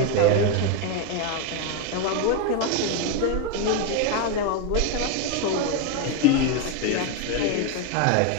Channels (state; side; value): different; both; correlation 0.02